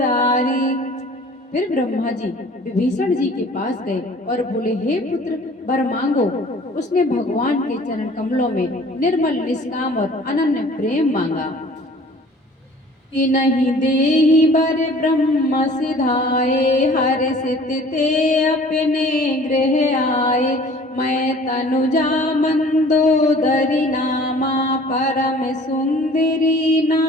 फिर ब्रह्मा जी विभीषण जी के पास गए और बोले, हे पुत्र, वर मांगो। उसने भगवान के चरण कमलों में निर्मल निष्काम और अनन्य प्रेम मांगा। कि नहीं देहि वर ब्रह्म सिधाए, हर्षित ते अपने गृह आए। मैं तनुजा मंदोदरी नामा, परम सुंदरी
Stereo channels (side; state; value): both; normal; correlation 0.49